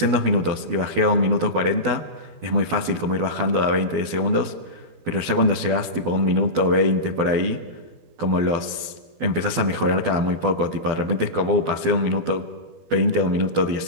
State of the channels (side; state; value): left; late; 12 ms